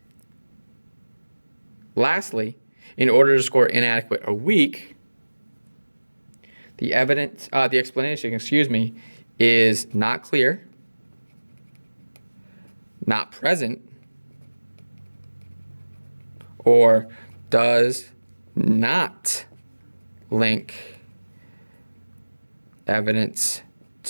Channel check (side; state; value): both; inverted; correlation -1.00